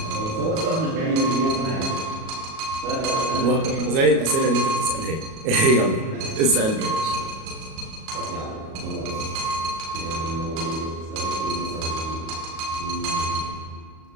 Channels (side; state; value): left; late; 37 ms